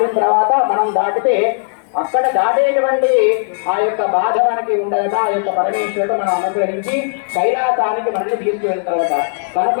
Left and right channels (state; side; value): silent; right; digital silence